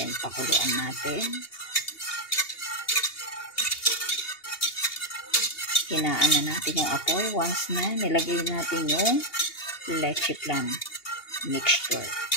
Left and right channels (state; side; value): late; right; 2.8 ms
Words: pakuluan natin. Hinaan na natin yung apoy. Once na, nilagay natin yung leche flan mixture.